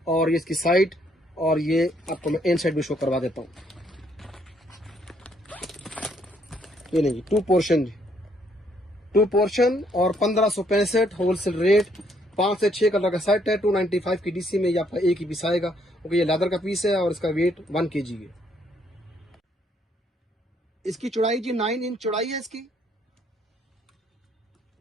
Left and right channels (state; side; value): normal; both; correlation 0.69